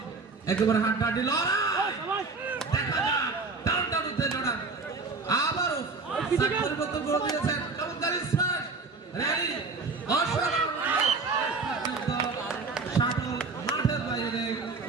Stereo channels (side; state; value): left; quieter; 4.1 dB